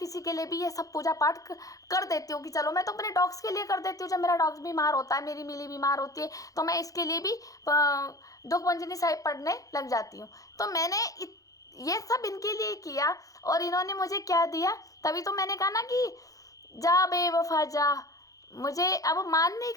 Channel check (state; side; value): late; right; 0.17 ms